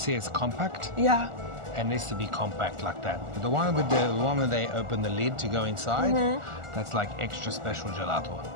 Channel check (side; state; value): left; late; 1.4 ms